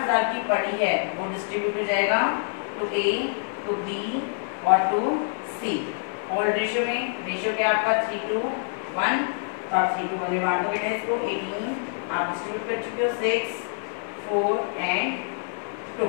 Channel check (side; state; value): right; silent; 59 dB below the other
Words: की पड़ी है वो डिस्ट्रीब्यूट हो जाएगा टू ए, टू बी और टू सी। ओल्ड रेशियो में, रेशियो क्या आपका 3:1, तो आप 3:1 में बांटो बेटा इसको। 18 आप डिस्ट्रीब्यूट कर चुके हो, 6, 4 and 2।